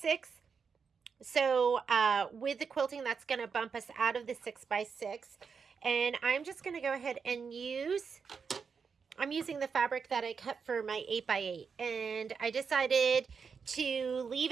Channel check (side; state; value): left; quieter; 5.8 dB